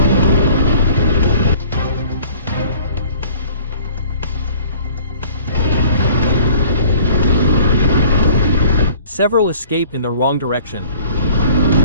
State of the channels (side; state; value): both; inverted; correlation -0.50